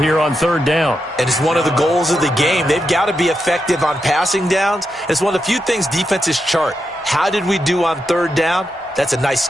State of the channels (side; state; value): both; normal; correlation 0.86